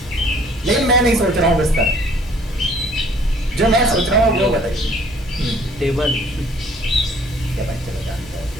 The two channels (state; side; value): normal; both; correlation 0.57